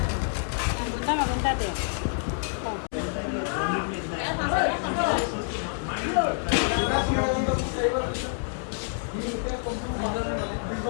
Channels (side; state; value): right; silent; 60 dB below the other